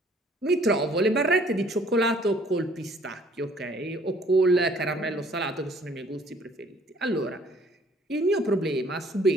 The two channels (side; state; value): both; normal; correlation 0.58